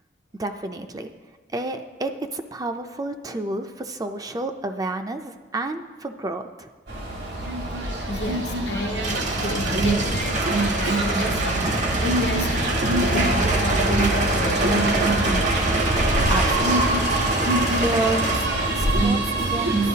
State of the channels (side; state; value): both; normal; correlation 0.41